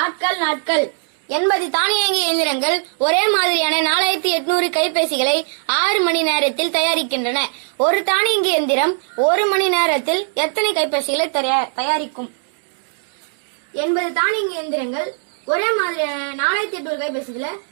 ஆட்கள் நாட்கள் 80 தானியங்கி இயந்திரங்கள் ஒரே மாதிரியான 4800 கைபேசிகளை 6 மணி நேரத்தில் தயாரிக்கின்றன. ஒரு தானியங்கி இயந்திரம் 1 மணி நேரத்தில் எத்தனை கைபேசிகளை தயாரிக்கும்? 80 தானியங்கி இயந்திரங்கள் ஒரே மாதிரியான 4800 கைபேசிகளை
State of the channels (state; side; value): silent; left; 66 dB below the other